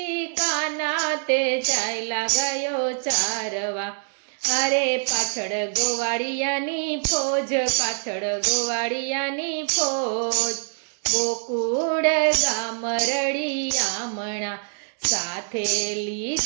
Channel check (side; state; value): left; silent; 57 dB below the other